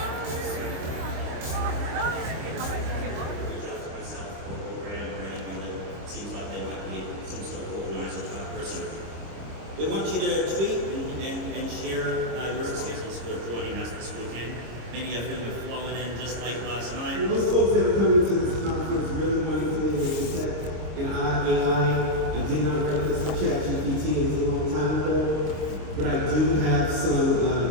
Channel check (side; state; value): left; late; 26 ms